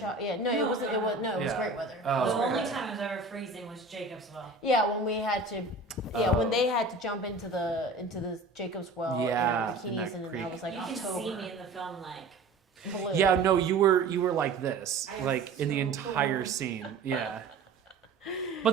Yeah, no, it wasn't. It was no. It was Yeah. great weather. Oh. It was The great only weather. time it was ever freezing was Jacob's well. Yeah, when we had to. Yeah, Oh. when they had to jump into the Jacob's well Yeah, in in their that bikinis, and then creek. that was like You can October. see me in the film like Blue. Yeah, no, you were like this, I was like in the so entire cool. scene. Yeah. But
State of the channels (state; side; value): quieter; left; 3.7 dB